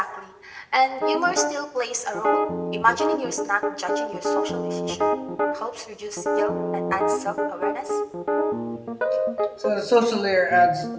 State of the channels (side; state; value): both; identical; correlation 1.00